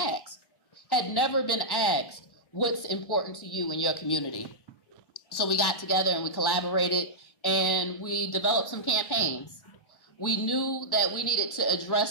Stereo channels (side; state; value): right; late; 1.1 ms